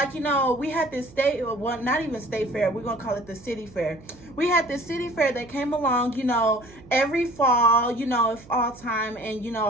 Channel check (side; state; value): right; noise; hum, 22 dB below the sound